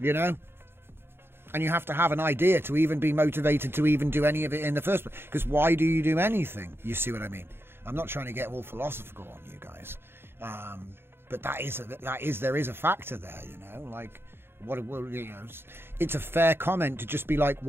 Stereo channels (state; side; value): late; left; 0.11 ms